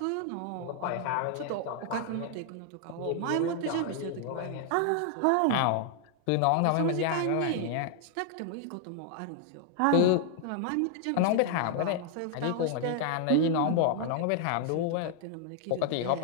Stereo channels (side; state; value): both; different; correlation 0.00